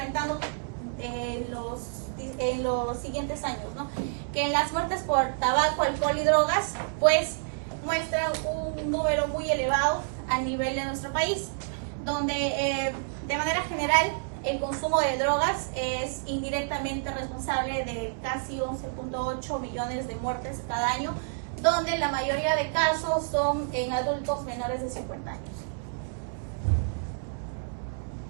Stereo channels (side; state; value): left; silent; digital silence